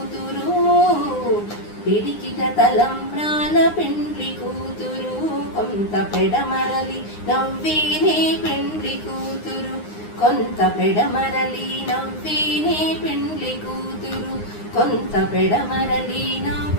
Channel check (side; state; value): right; late; 9.7 ms